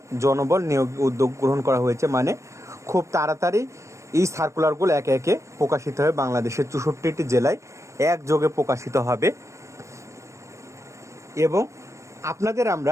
জনবল নিয়োগ উদ্যোগ গ্রহণ করা হয়েছে। মানে খুব তাড়াতাড়ি এই সার্কুলারগুলো একে একে প্রকাশিত হয়ে বাংলাদেশের 64টি জেলায় একযোগে প্রকাশিত হবে। এবং আপনাদের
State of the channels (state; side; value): late; left; 0.15 ms